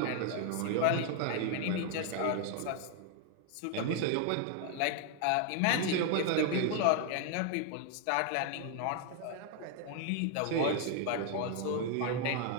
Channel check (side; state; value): both; different; correlation 0.00